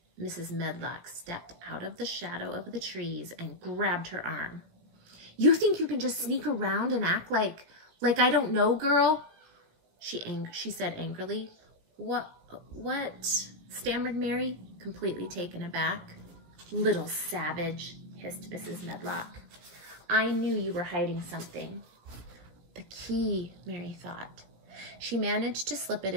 Mrs. Medlock stepped out of the shadow of the trees and grabbed her arm. "You think you can just sneak around and act like I don't know, girl?" She said angrily. What? Stammered Mary, completely taken aback. "Little savage," hissed Mrs. Medlock. "I knew you were hiding something." The key, Mary thought. She managed to slip it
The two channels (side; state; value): left; late; 17 ms